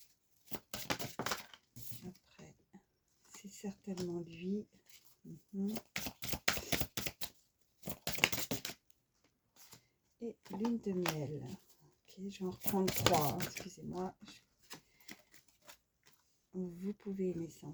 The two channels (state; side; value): identical; both; correlation 1.00